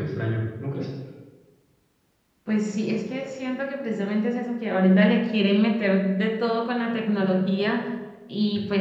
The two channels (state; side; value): identical; both; correlation 1.00